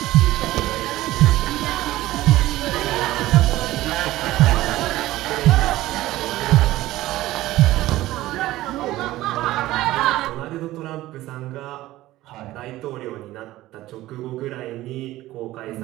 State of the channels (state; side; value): quieter; left; 16.3 dB